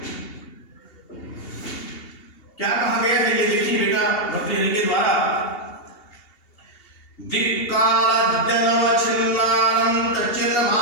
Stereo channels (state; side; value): late; right; 2.8 ms